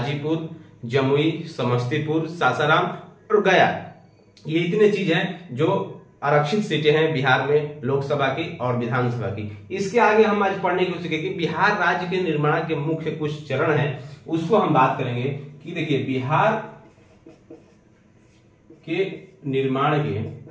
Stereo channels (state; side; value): identical; both; correlation 1.00